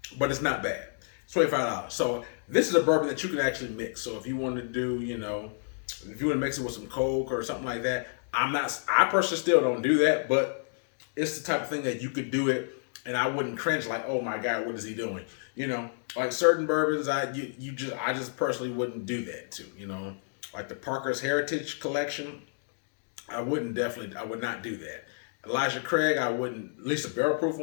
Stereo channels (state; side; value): silent; right; digital silence